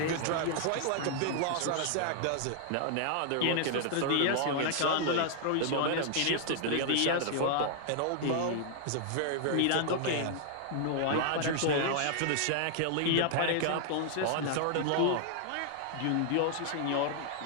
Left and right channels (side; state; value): both; different; correlation 0.00